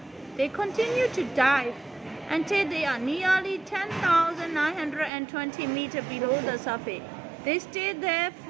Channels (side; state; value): left; drops out; at 5.1 s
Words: They continued to dive until they are nearly 10,920 meters below the surface. They stayed there